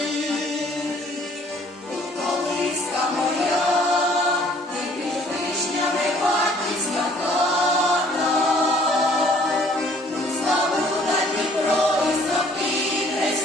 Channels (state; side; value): normal; both; correlation 0.58